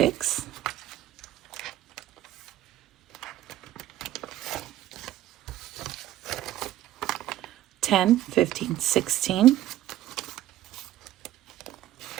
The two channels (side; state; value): left; quieter; 13.9 dB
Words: 10, 15, 16.